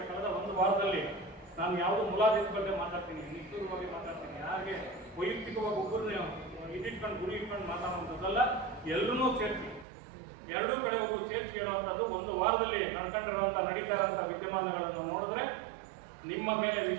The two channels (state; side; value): drops out; left; at 9.9 s